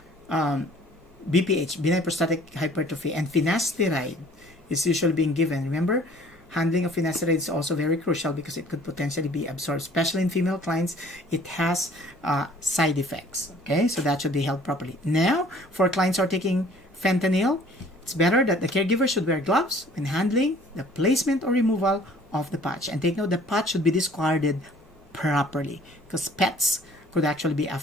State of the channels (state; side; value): normal; both; correlation 0.54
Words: BPH, benign prostatic hypertrophy, and finasteride is usually being given. Remember, handling of finasteride is also very crucial because it could potentially be absorbed, especially in female clients. It has side effects. Okay, so that should be held properly. Now, for clients who are taking fentanyl, it's better that the caregiver should wear gloves when handling the placement or removal of the patch. And take note, the patch should be discarded properly because pets could actually be